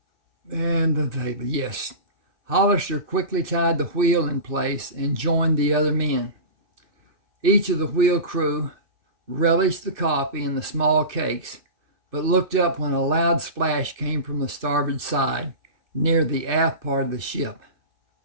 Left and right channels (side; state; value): left; late; 2.6 ms